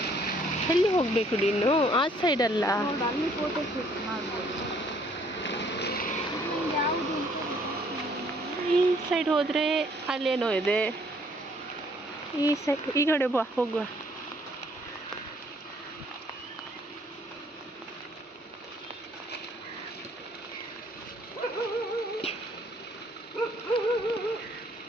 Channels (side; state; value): both; normal; correlation 0.63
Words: ಎಲ್ಲಿ ಹೋಗ್ಬೇಕು ನೀನು? ಆ ಸೈಡ್ ಅಲ್ಲ, ಅಲ್ಲಿ ಫೋಟೋ ಶೂಟ್ ಮಾಡ್ಬೋದು. ಯಾವುದು ಈ ಸೈಡ್ ಹೋದರೆ ಅಲ್ಲೇನೋ ಇದೆ. ಈ ಸೈಡ್ ಈ ಕಡೆ ಹೋಗುವ.